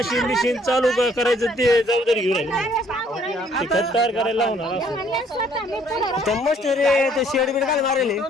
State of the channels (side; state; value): both; normal; correlation 0.62